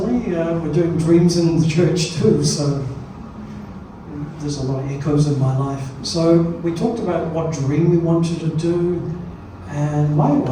we're doing dreams in the church too, so there's a lot of echoes in my life. So we talked about what dream we wanted to do, and my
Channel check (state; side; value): identical; both; correlation 1.00